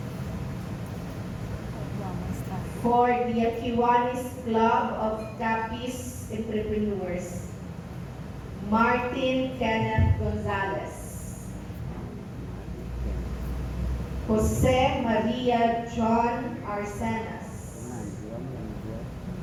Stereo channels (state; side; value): identical; both; correlation 1.00